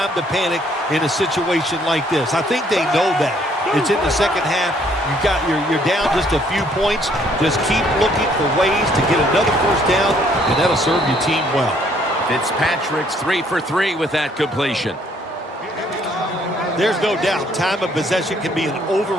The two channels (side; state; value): both; normal; correlation 0.65